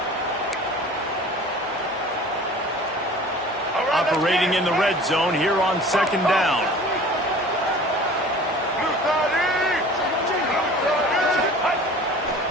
Operating in the red zone here on 2nd down.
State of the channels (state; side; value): normal; both; correlation 0.44